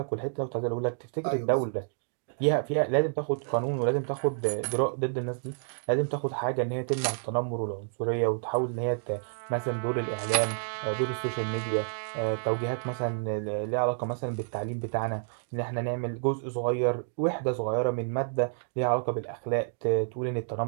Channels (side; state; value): left; silent; digital silence